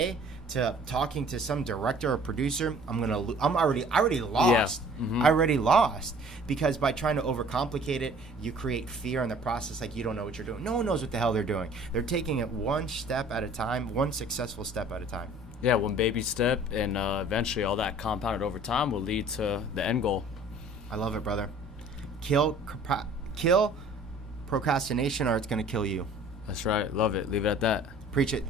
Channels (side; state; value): both; normal; correlation 0.51